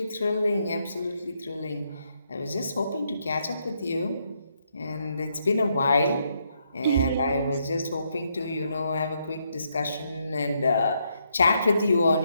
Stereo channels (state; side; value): inverted; both; correlation -0.77